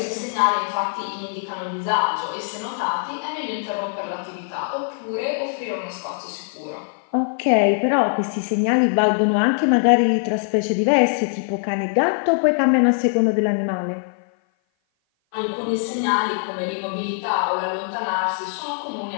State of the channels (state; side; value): silent; right; 57 dB below the other